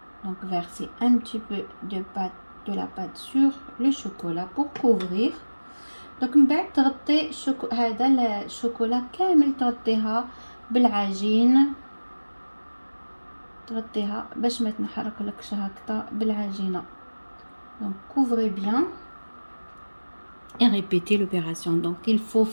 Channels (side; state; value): both; inverted; correlation -1.00